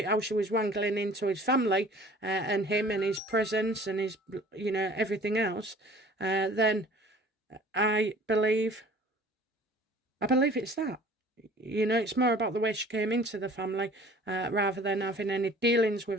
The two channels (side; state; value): both; normal; correlation 0.49